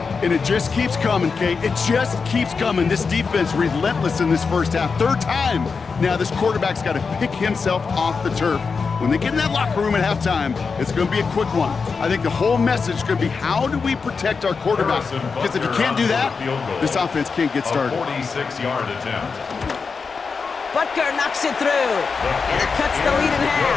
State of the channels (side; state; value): right; quieter; 5.1 dB